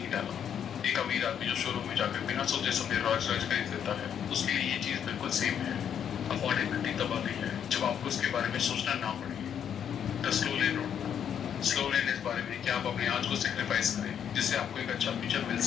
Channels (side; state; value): right; quieter; 8.7 dB